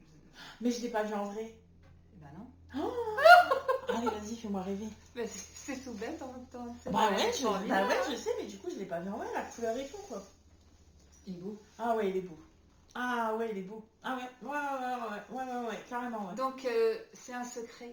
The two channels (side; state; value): both; identical; correlation 1.00